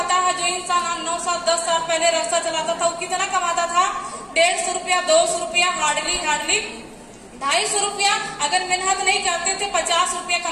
है, जो इंसान 9 साल 10 साल पहले रक्षा चलाता था वो कितना कमाता था? 150 रुपया, 200 रुपया, हार्डली 250 रुपया। अगर मेहनत नहीं करते थे 50 रुपया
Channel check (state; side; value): identical; both; correlation 1.00